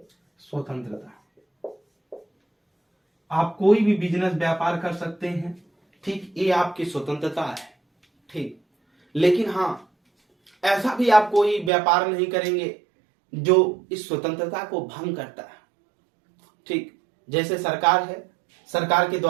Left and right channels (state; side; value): drops out; left; at 11.7 s